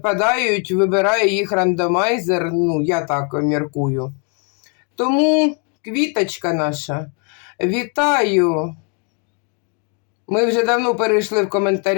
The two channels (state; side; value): quieter; right; 38.1 dB